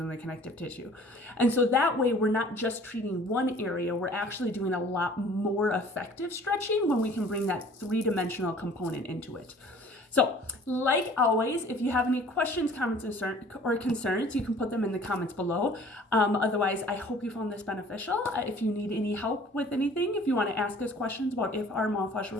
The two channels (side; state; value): both; normal; correlation 0.51